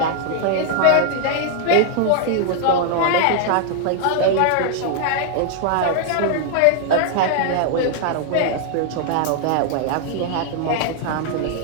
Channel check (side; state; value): both; different; correlation 0.00